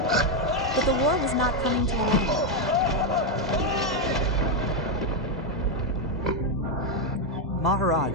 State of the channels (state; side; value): normal; both; correlation 0.03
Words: But the war was not coming to an end.